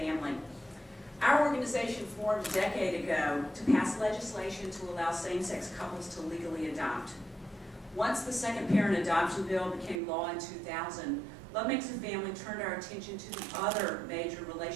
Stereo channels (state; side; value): drops out; left; at 10.0 s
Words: Our organization formed a decade ago to pass legislation to allow same-sex couples to legally adopt. Once the second parent adoption bill became law in 2000, Love Makes a Family turned our attention to the other major